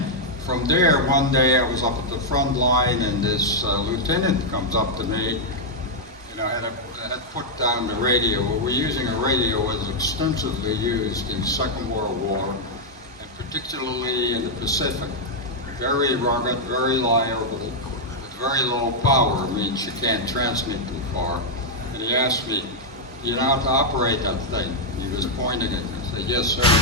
from there, one day I was up at the front line and this lieutenant comes up to me, and I had had put down the radio. Well, we're using a radio that was extensively used in the Second World War, and particularly in the Pacific. Very rugged, very liable, with very low power. Means you can't transmit too far. And he asked me, "Do you know how to operate that thing?" He was pointing it. I said, "Yes, sir."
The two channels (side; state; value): both; normal; correlation -0.03